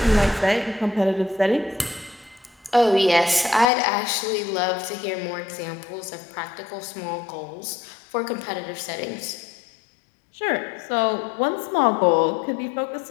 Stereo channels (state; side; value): drops out; right; at 3.7 s